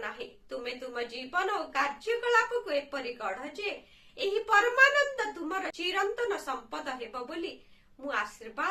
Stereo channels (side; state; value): both; identical; correlation 1.00